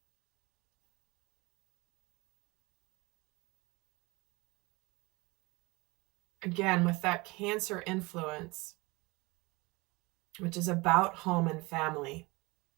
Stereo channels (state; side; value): quieter; left; 24.2 dB